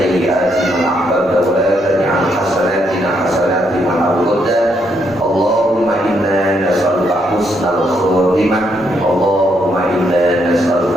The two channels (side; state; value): both; normal; correlation 0.75